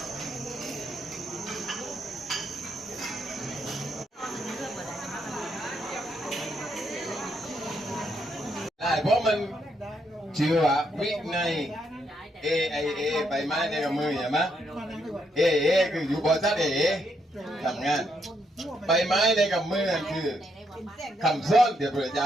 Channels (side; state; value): both; normal; correlation 0.77